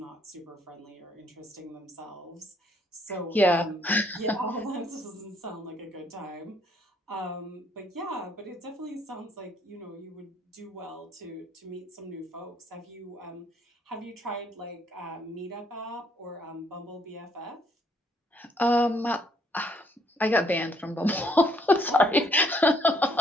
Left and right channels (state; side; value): normal; both; correlation 0.67